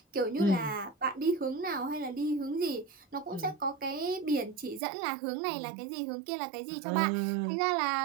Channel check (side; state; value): left; drops out; at 4.8 s